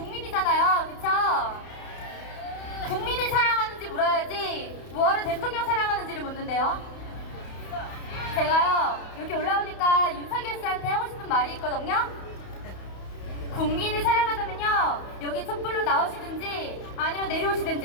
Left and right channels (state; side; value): late; right; 31 ms